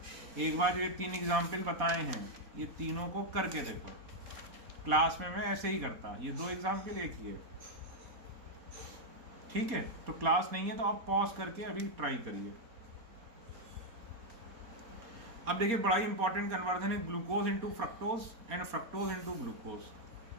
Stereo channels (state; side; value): late; left; 4.1 ms